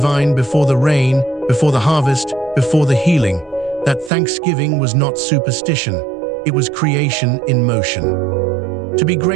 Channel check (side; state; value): left; drops out; at 4.1 s